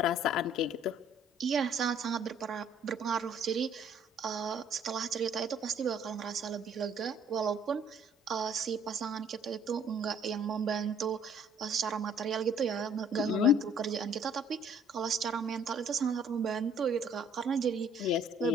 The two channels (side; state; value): both; normal; correlation 0.59